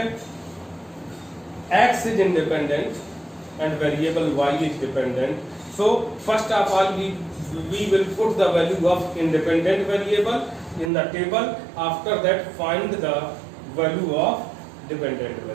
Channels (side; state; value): left; drops out; at 10.9 s